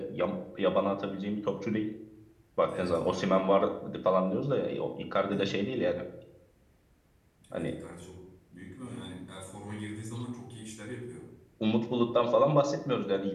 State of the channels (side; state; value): both; identical; correlation 1.00